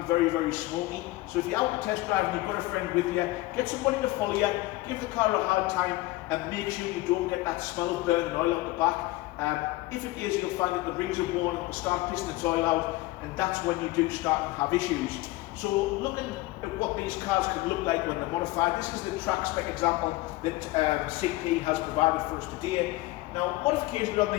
very, very smoky. So if you're out to test drive and you've got a friend with you, get somebody to follow you, give the car a hard time, and make sure you don't get that smell of burning oil out the back. If it is, you'll find that the rings are worn, it will start pissing its oil out, and that's when you do start to have issues. So looking at what these cars could look like when they're modified, this is the track spec example that CP has provided for us today. Now, modifications on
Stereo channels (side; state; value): right; quieter; 19.3 dB